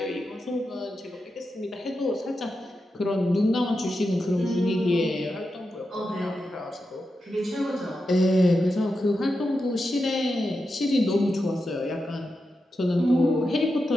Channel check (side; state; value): both; normal; correlation 0.89